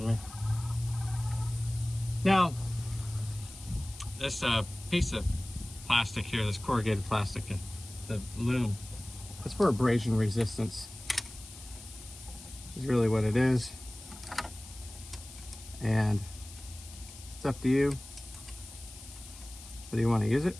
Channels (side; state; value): left; noise; hiss, 17 dB below the sound